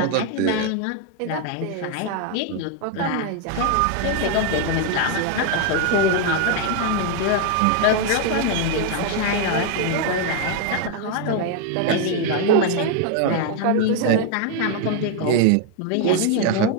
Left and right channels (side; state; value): both; different; correlation 0.00